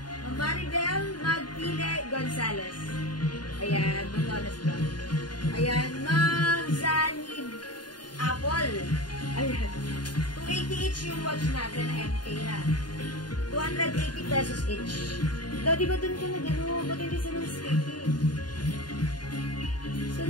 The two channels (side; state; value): right; late; 0.70 ms